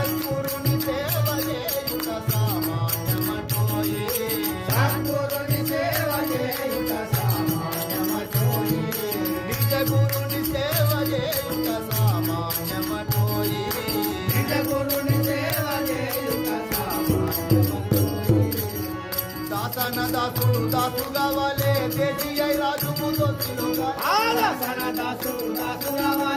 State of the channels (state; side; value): identical; both; correlation 1.00